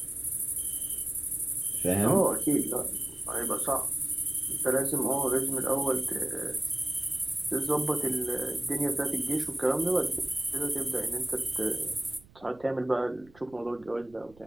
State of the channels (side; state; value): right; noise; rumble, 26 dB below the sound